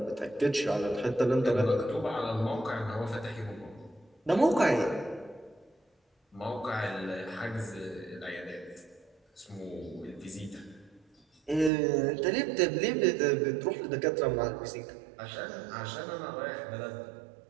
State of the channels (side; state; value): left; drops out; at 11.7 s